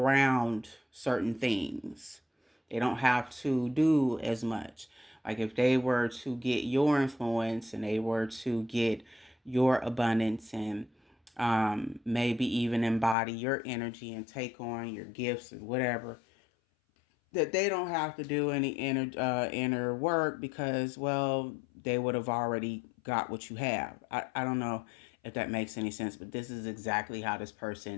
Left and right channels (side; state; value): right; drops out; at 13.2 s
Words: certain things. They don't have to do as much. Like if they were to get your influence and they were to get your abundance and maybe even embody your energy and take on your gifts and whatever, that they don't have to do any inner work because, well, they would have already got what you have. I don't know if that makes any sense, but this is exactly how this